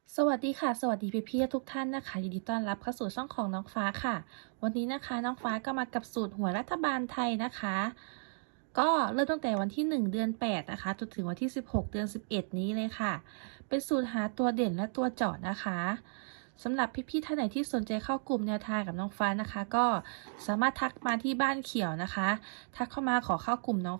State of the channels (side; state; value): left; silent; 55 dB below the other